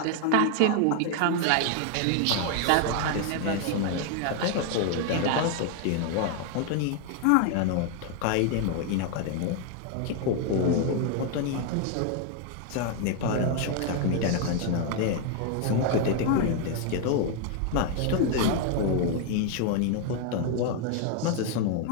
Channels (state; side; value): different; both; correlation 0.00